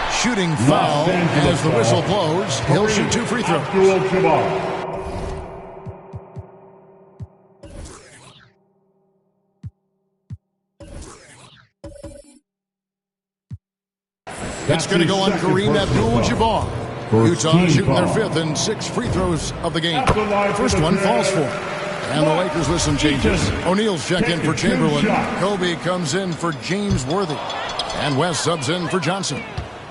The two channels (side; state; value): both; identical; correlation 1.00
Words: Shooting foul as the whistle blows. He'll shoot 2 free throws. It's going to go on Kareem Abdul-Jabbar. Utah shooting their 5th and 6 free throws of the game. First one falls for. And the Lakers with some changes. O'Neal's checked in for Chamberlain. Kobe comes in for James Worthy. And West subs in for Johnson.